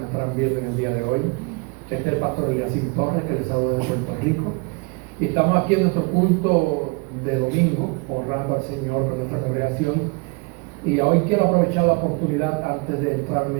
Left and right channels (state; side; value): quieter; left; 29.6 dB